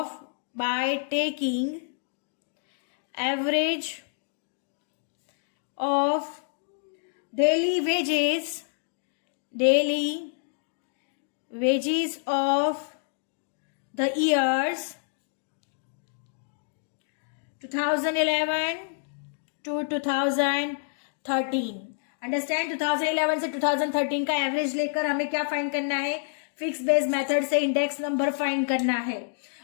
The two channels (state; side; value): silent; right; digital silence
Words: daily wages of the years 2011 to 2013। Understand? 2011 से 2013 का एवरेज लेकर हमें क्या फाइंड करना है? फिक्स बेस्ड मेथड से इंडेक्स नंबर फाइंड करना है।